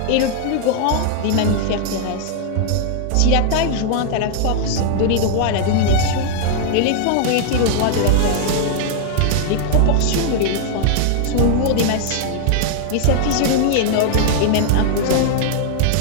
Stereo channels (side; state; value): both; different; correlation -0.01